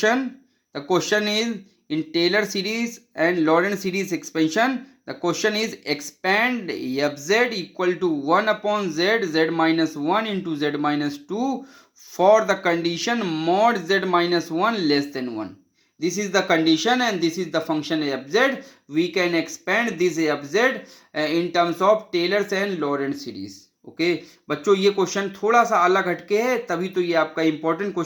The question is in Taylor series and Lorentz series expansion. The question is expand fz equal to 1 upon z minus 1 into z minus 2 for the condition mod z minus 1 less than 1. This is the condition and this is the function fz. We can expand this fz in terms of Taylor's and Lorentz series. Okay बच्चों ये question थोड़ा सा अलग हटके है, तभी तो ये आपका इंपॉर्टेंट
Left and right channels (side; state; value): both; identical; correlation 1.00